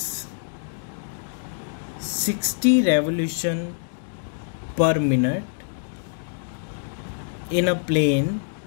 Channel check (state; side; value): silent; right; digital silence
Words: 60 revolution per minute in a plane